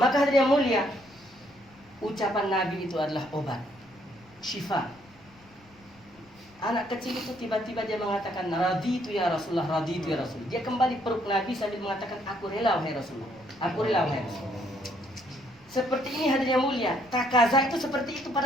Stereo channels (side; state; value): left; noise; rumble, 28 dB below the sound